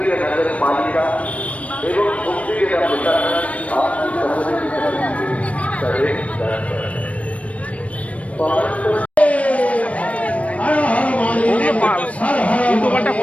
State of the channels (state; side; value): late; right; 0.065 ms